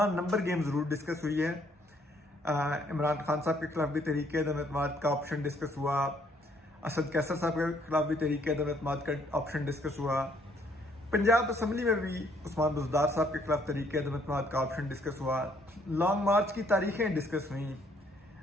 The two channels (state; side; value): normal; both; correlation 0.66